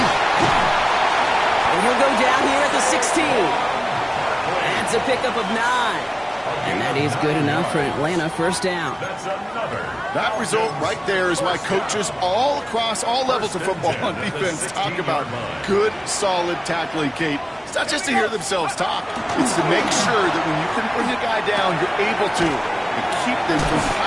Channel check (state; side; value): identical; both; correlation 1.00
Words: And he'll go down here at the 16. That's a pickup of 9. And that is good enough for Atlanta. 1st down. That result right there is why coaches all across all levels of football and defense talk about good, solid tackling, Kate. It's not just to hear themselves talk. It's to make sure that when you can bring a guy down, you're able to and keep them from